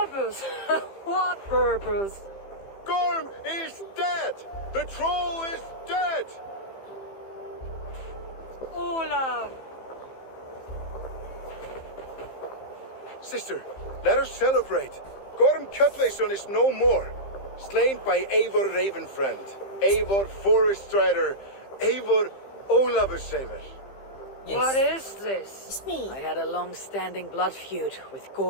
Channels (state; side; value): late; right; 15 ms